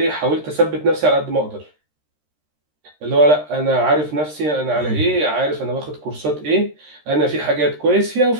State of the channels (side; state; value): left; late; 13 ms